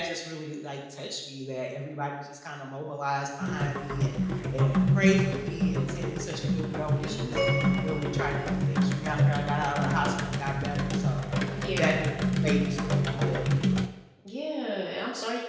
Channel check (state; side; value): identical; both; correlation 1.00